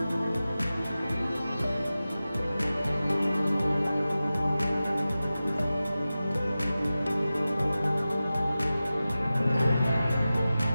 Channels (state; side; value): inverted; both; correlation -0.95